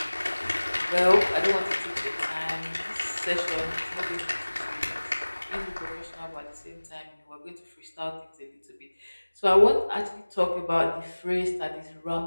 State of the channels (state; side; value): inverted; both; correlation -1.00